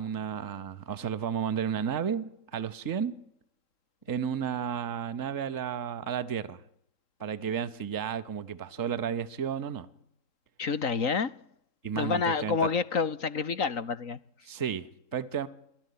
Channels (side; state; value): right; late; 3.8 ms